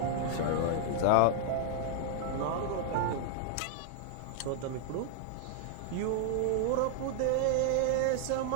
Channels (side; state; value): both; different; correlation -0.01